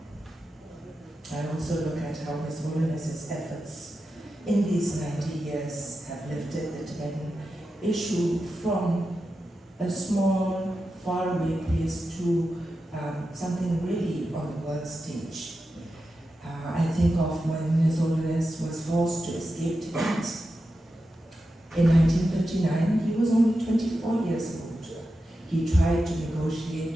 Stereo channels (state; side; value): normal; both; correlation 0.90